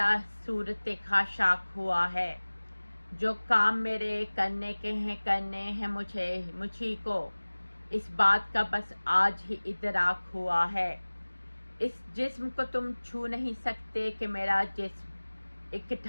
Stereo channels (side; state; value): both; inverted; correlation -1.00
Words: सूरत खाशाक हुआ है। जो काम मेरे करने के हैं करने हैं मुझी को, इस बात का बस आज ही इदराक हुआ है। इस जिस्म को तुम छू नहीं सकते कि मेरा जिस्म एक